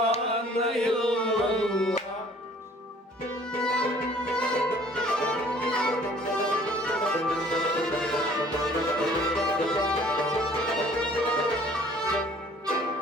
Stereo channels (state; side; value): normal; both; correlation 0.54